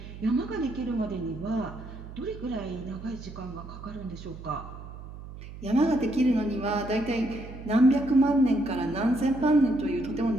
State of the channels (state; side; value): noise; right; hum, 13 dB below the sound